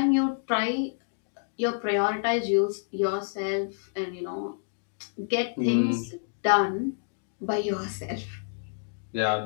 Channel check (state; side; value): silent; right; digital silence